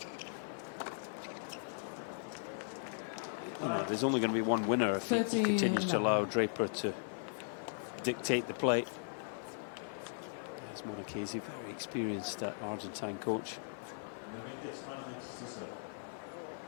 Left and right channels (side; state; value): right; silent; 52 dB below the other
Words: You know, there's only going to be one winner if he continues to allow Draper to dictate the play. As Marchesi, very experienced Argentine coach.